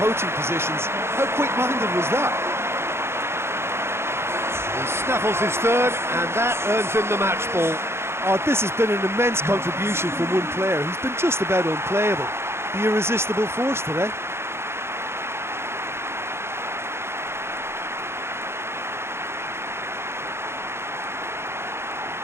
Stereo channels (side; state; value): left; late; 0.12 ms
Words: positions. How quick-minded was that? He snaffles his third, and that earns him the match ball. Oh, this has been an immense contribution from one player who's been just about unplayable. The irresistible force today.